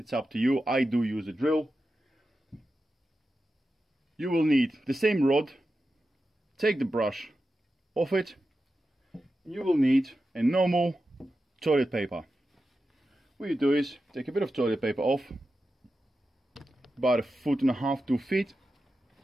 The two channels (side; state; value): both; normal; correlation 0.91